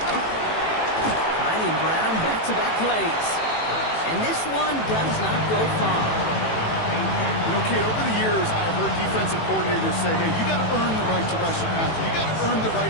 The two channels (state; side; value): late; right; 18 ms